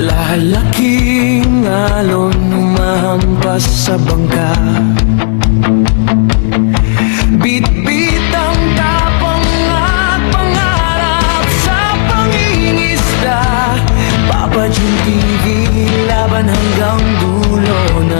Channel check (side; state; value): right; silent; digital silence